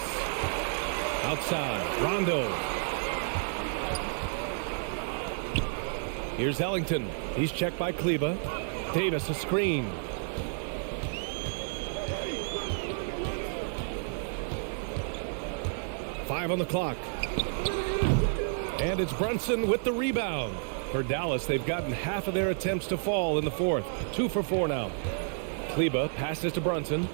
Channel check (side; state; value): left; silent; digital silence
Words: Outside. Rondo. Here's Ellington. He's checked by Kleber. Davis a screen. Five on the clock. And it's Brunson with the rebound. For Dallas, they've gotten half of their attempts to fall in the fourth. 2 for 4 now. Kleber passes to Brunson.